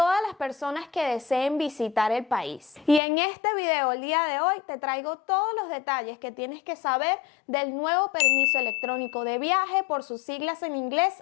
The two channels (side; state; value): right; drops out; at 3.0 s